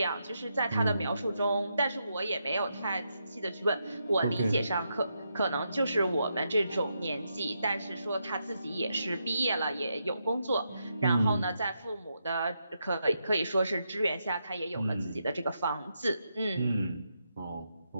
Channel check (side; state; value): both; inverted; correlation -0.82